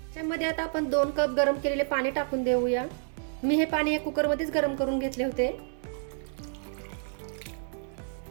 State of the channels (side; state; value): left; silent; digital silence